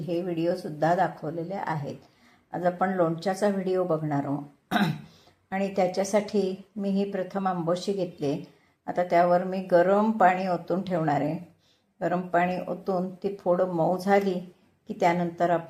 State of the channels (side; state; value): both; identical; correlation 1.00